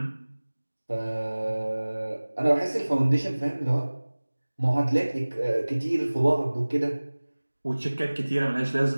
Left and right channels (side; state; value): both; inverted; correlation -1.00